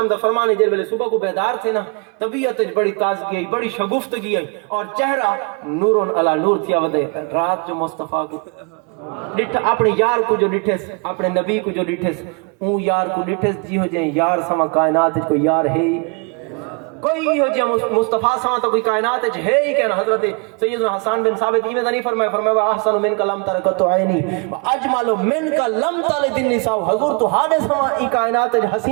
دا فرمانے جے ویلے صبح کو بیدار تھے نا طبیعت بڑی تازگی آئی بڑی شگفتگی آئی اور چہرہ نور علی نور تھیا ودے رات جو مصطفیٰ کو اپنے یار کو جو ڈٹھس اپنے نبی کو جو ڈٹھس اون یار کو ڈٹھس جی ہو جائیں یار سما کائنات کوئی یار ہے کوئی ہو جائے مصطفیٰ ساں تو کوئی کائنات ہے ہی کہنا حضرت سیدنا حسان بن ثابت ایمیں نہیں فرمایا احسن من کا لم ترکت عینی اجمل من کا لم تلد النساء حضور تو حال سما ای کائنات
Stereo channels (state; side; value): quieter; left; 33.8 dB